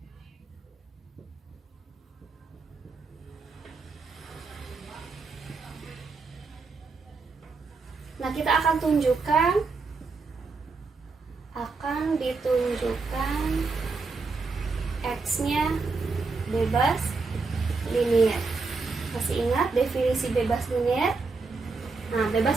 Nah, kita akan ditunjukkan X-nya bebas linier. Masih ingat definisi bebas linier? Nah,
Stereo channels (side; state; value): left; quieter; 4.2 dB